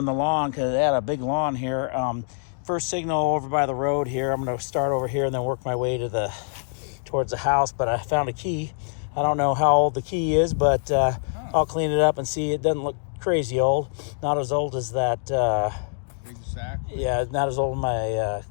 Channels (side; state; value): right; silent; 62 dB below the other